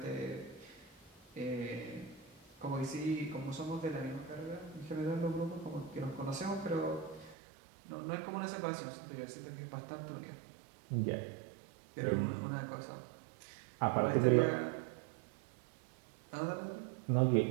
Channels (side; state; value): left; drops out; at 7.4 s